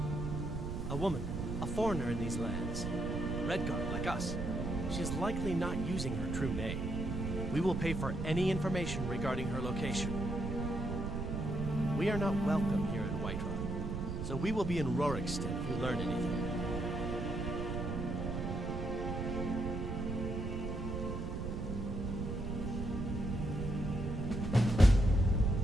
A woman, a foreigner in these lands. Redguard, like us. She is likely not using her true name. We will pay for any information regarding her location. We are not welcome here in Whiterun, so we will be in Rorikstead if you learn anything.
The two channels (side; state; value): right; noise; rumble, 3 dB below the sound